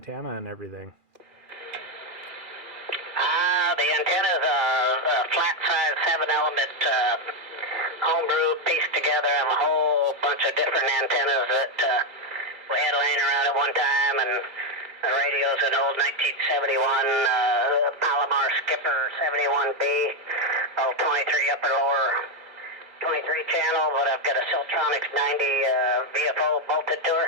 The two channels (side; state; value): left; late; 2.3 ms